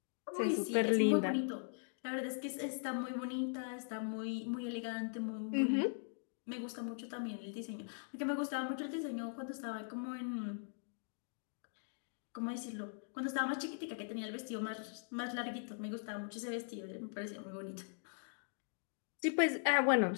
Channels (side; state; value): right; silent; digital silence